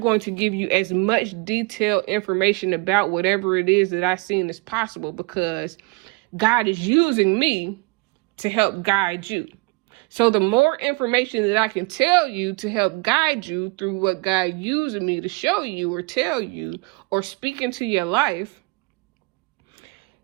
to give you as much detailed information about whatever it is that I've seen as possible, because God is using me to help guide you. So the more information that I can tell you to help guide you through what God using me to show you or tell you or speak into your life,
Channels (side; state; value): left; quieter; 27.6 dB